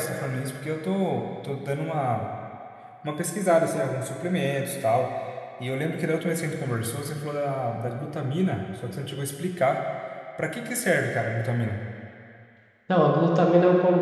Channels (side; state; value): both; identical; correlation 1.00